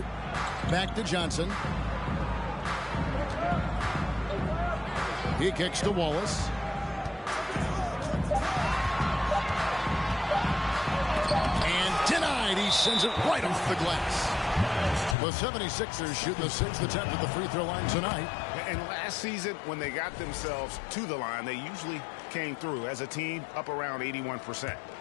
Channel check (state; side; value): drops out; right; at 15.2 s